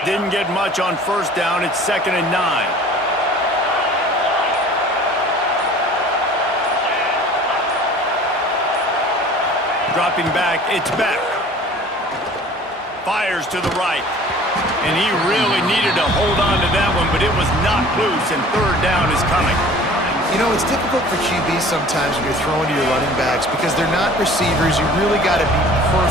Didn't get much on first down. It's 2nd and 9. Dropping back, it's back. Fires to the right. And he really needed to hold on to that one, but it was knocked loose, and third down is coming. You know, it's difficult for QBs sometimes when you're throwing to your running backs because they're not receivers. You really got to be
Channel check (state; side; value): normal; both; correlation 0.47